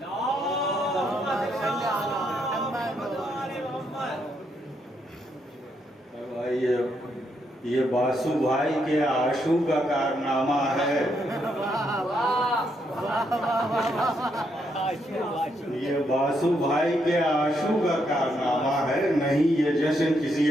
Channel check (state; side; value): normal; both; correlation 0.77